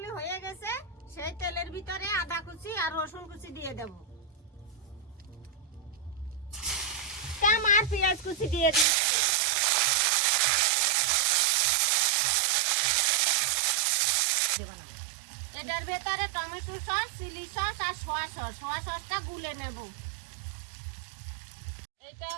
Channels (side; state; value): left; drops out; at 8.8 s